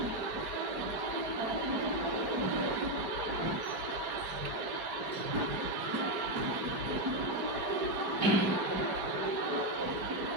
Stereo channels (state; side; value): late; left; 4.6 ms